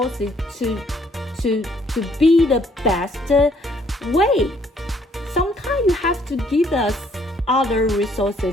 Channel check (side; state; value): both; normal; correlation 0.65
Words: to be the best way. Sometimes you have to give us other